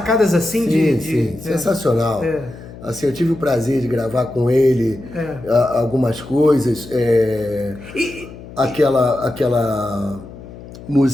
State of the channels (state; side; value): noise; left; hum, 16 dB below the sound